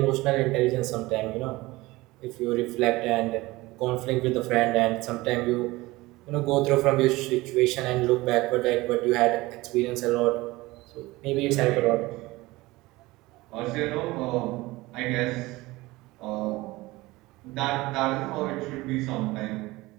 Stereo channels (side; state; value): left; quieter; 20.3 dB